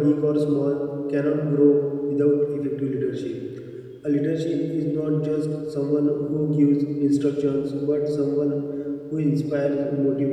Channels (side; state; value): both; identical; correlation 1.00